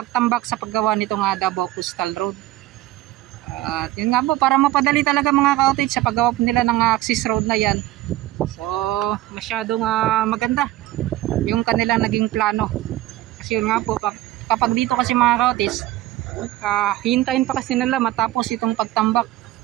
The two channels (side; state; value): left; quieter; 15.6 dB